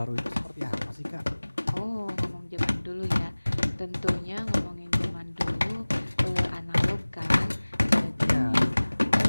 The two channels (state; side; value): inverted; both; correlation -1.00